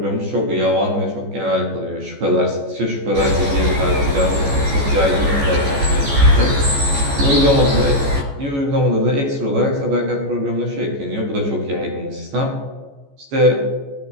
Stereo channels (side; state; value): left; late; 14 ms